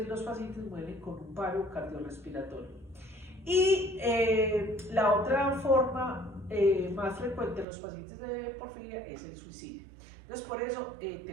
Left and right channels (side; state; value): left; drops out; at 7.7 s